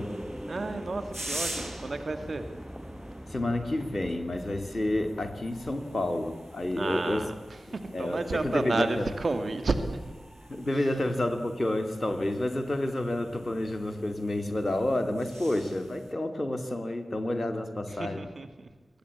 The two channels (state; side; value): normal; both; correlation 0.94